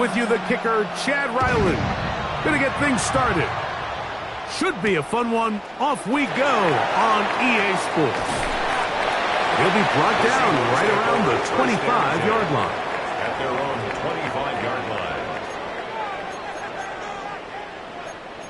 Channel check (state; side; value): identical; both; correlation 1.00